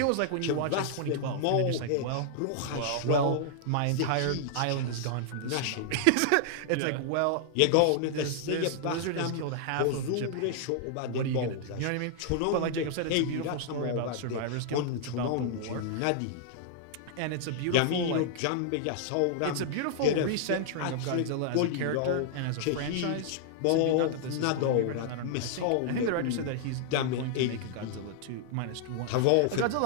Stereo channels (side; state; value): both; different; correlation -0.01